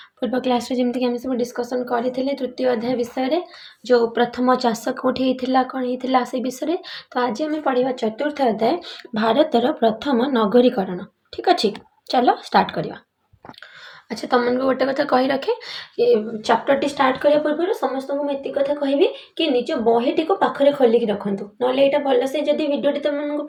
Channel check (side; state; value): both; identical; correlation 1.00